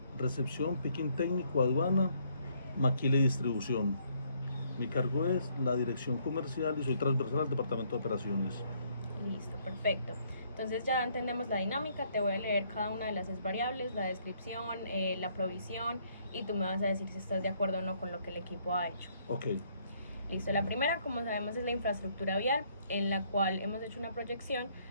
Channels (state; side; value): inverted; both; correlation -0.68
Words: recepción, picking técnico, aduana, maquila y distribución. Mi cargo es la dirección comercial y soy transversal al departamento de operaciones. Listo, perfecto. Entonces ya entendemos la dinámica, te voy a leer cada una de las variables, la descripción, la provisión, y tú me vas a decir si estás de acuerdo o no con lo que el equipo ha hecho. Ok. Listo, la primera, como sabemos, es la infraestructura vial, en la cual hemos hecho una proyección